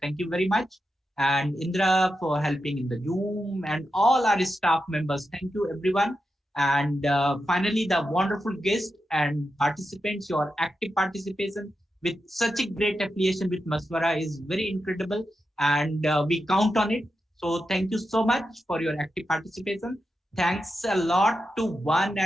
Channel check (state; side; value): normal; both; correlation 0.88